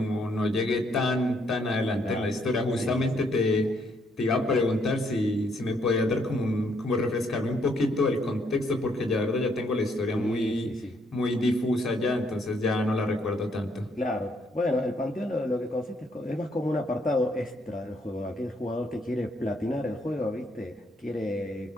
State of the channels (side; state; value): both; normal; correlation 0.71